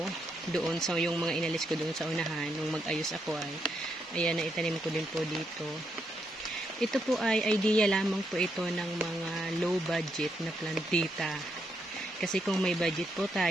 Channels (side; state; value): both; normal; correlation 0.79